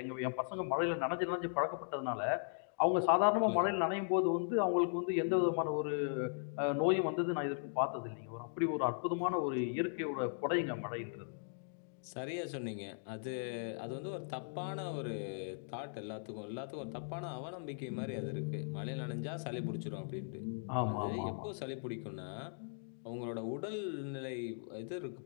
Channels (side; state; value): right; silent; digital silence